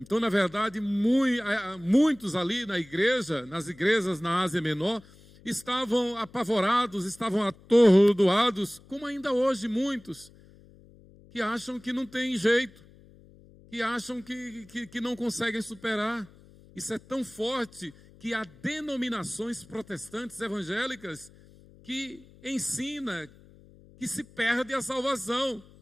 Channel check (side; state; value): left; noise; hum, 24 dB below the sound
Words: na verdade, muitos ali na igreja, nas igrejas na Ásia Menor, estavam apavorados, estavam atordoados, como ainda hoje muitos, que acham que não tem jeito, que acham que não conseguem superar. Isso é tão forte que há denominações protestantes evangélicas que ensina que se perde a salvação.